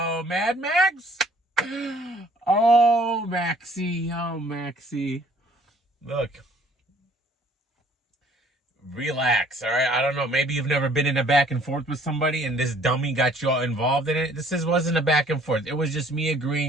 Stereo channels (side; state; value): both; normal; correlation 0.57